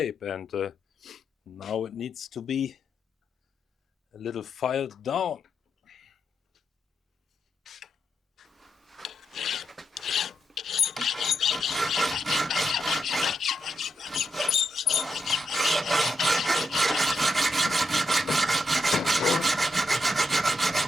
and now it needs to be a little filed down.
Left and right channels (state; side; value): normal; both; correlation 0.83